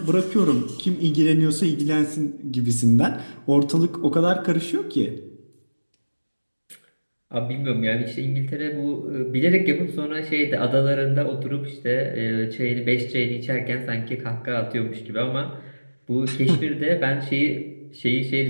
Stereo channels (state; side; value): inverted; both; correlation -1.00